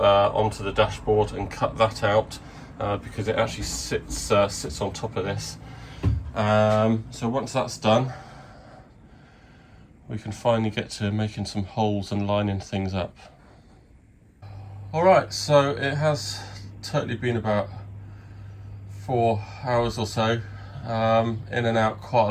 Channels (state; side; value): identical; both; correlation 1.00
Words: the dashboard and cut that out because it actually sits on top of this. So once that's done, we can finally get to making some holes and lining things up. Alright, so it has totally been about 4 hours or so, in and out quite